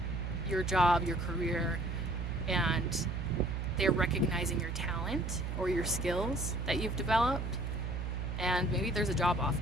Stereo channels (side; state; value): right; noise; hum, 3 dB below the sound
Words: your job, your career, and they're recognizing your talent or your skills that you've developed, and maybe there's a job